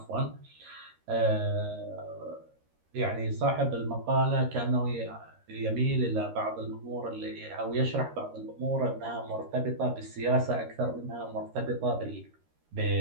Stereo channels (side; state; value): left; late; 13 ms